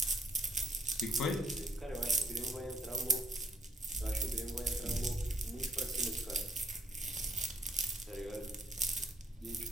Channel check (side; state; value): both; normal; correlation 0.66